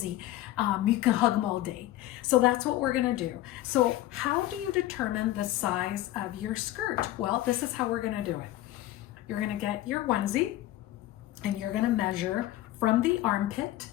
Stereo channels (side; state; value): right; quieter; 15.0 dB